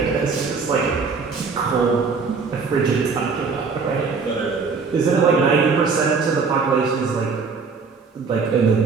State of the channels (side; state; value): left; quieter; 4.9 dB